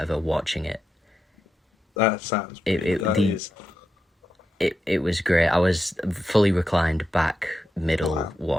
watching it. that sounds. It was great. I was fully reclined back middle Wow.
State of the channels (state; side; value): normal; both; correlation 0.87